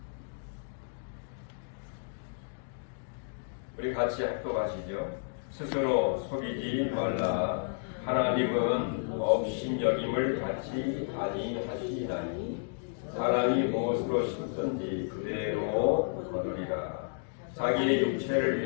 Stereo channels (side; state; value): right; silent; digital silence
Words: 우리 같이 합독하시죠. 스스로 속이지 말라. 하나님은 업신여김을 받지 아니하시나니 사람이 무엇으로 심든지 그대로 거두리라. 자기의 육체를